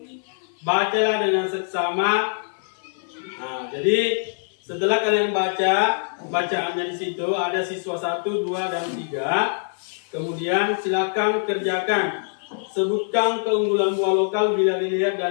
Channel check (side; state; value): right; silent; 57 dB below the other